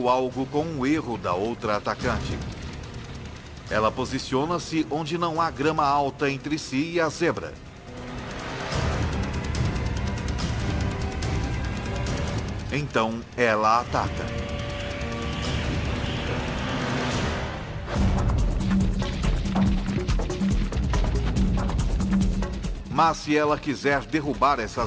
algo com um erro da outra atacante. Ela posiciona-se onde não há grama alta entre si e a zebra. Então, ela ataca. Mas se ela quiser derrubar essa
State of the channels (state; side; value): identical; both; correlation 1.00